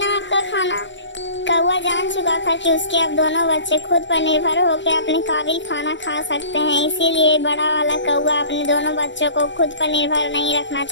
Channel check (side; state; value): right; late; 0.53 ms